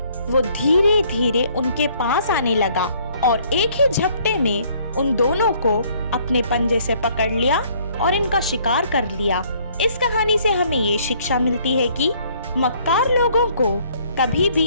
वो धीरे धीरे उनके पास आने लगा और एक ही झपटे में उन दोनों को अपने पंजे से पकड़ लिया और इनका शिकार कर लिया। इस कहानी से हमें ये शिक्षा मिलती है कि मक्कार लोगों को कभी भी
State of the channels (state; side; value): inverted; both; correlation -0.62